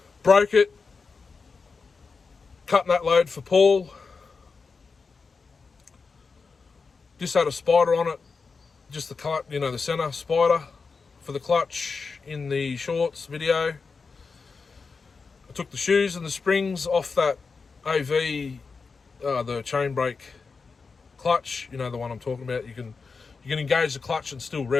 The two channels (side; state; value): right; quieter; 4.8 dB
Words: Broke it, cutting that load for Paul. Just had a spider on it, just the center spider for the clutch in the shorts video. I took the shoes and the springs off that AV, the chain brake clutch, the one I'm talking about. You can engage the clutch and still